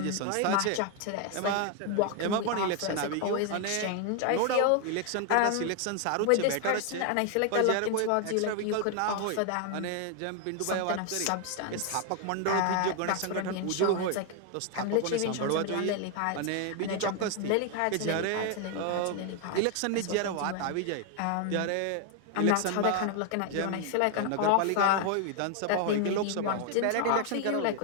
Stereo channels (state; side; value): different; both; correlation 0.01